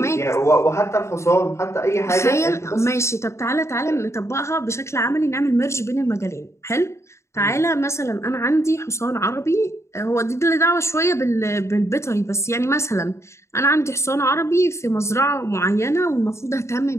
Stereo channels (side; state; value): right; late; 0.14 ms